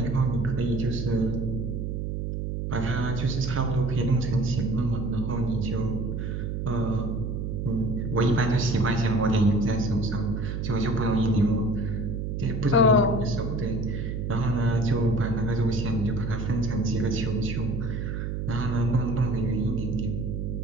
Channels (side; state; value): right; noise; hum, 3 dB below the sound